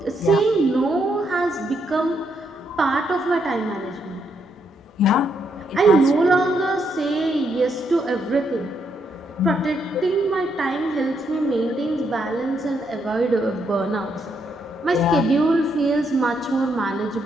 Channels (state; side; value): normal; both; correlation 0.77